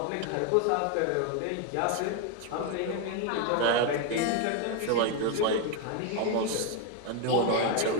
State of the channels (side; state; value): both; different; correlation 0.01